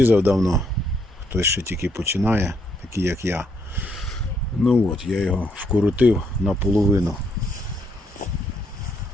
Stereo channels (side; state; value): both; normal; correlation 0.73